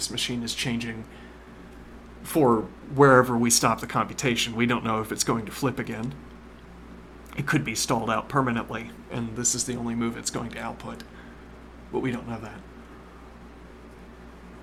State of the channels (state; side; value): identical; both; correlation 1.00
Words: machine is changing for wherever we stop the computation. We don't know if it's going to flip again. It could be stalled out permanently, and this is the only move it's going to output. But we don't know that.